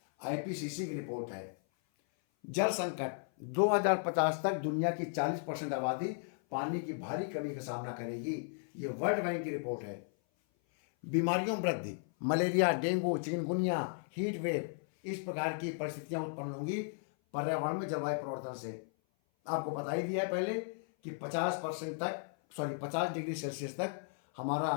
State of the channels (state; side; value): silent; right; 54 dB below the other